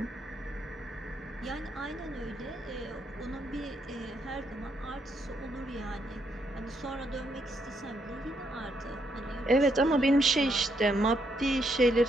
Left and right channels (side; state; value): both; normal; correlation 0.76